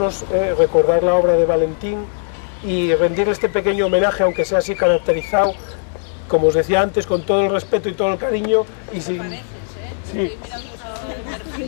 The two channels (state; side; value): silent; right; 65 dB below the other